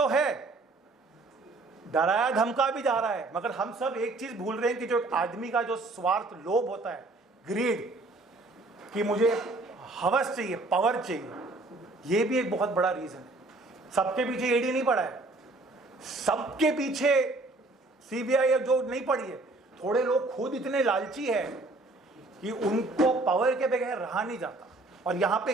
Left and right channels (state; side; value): quieter; left; 3.1 dB